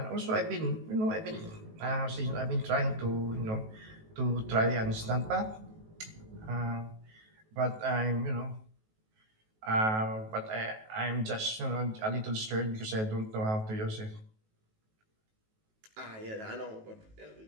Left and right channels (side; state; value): left; late; 18 ms